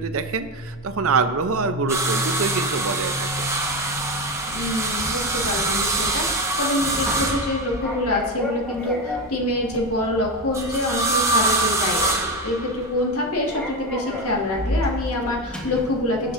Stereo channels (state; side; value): normal; both; correlation 0.15